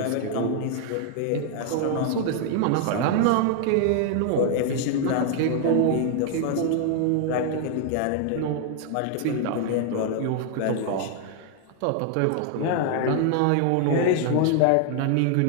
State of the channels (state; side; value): different; both; correlation 0.00